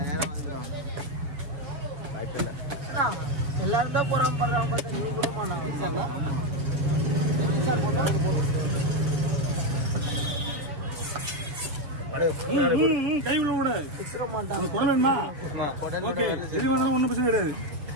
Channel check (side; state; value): left; late; 6.8 ms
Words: நேரம் வந்துடும். எல்லாரும் தான் போறாம பண்றாங்க. பார்த்தா நீ கூடமா? நான் கை விட விடாது. வேணுமா? ஓகே, எது வேணாலும் ஒன்றும் பிரச்சனை கிடையாது.